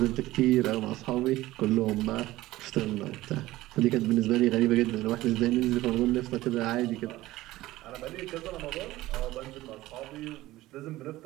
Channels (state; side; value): quieter; left; 17.1 dB